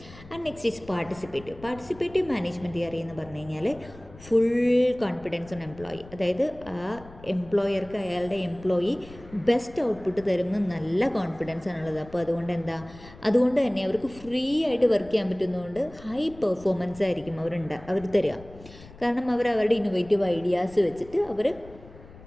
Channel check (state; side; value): noise; left; rumble, 20 dB below the sound